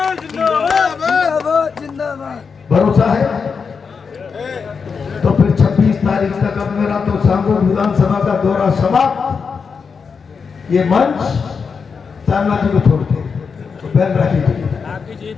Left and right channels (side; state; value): right; quieter; 5.6 dB